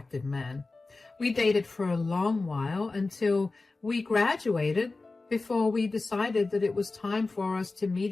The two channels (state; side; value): quieter; right; 3.5 dB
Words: man. We dated for a long while until we graduated before we decided that it was time for us to